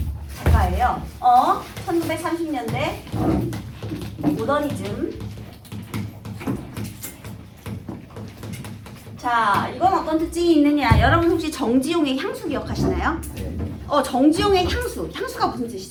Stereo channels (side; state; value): both; identical; correlation 1.00